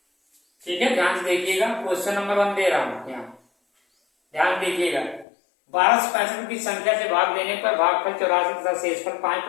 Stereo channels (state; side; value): drops out; right; at 5.2 s